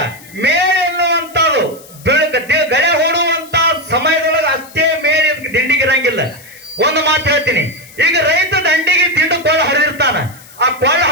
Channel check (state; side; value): noise; left; hiss, 22 dB below the sound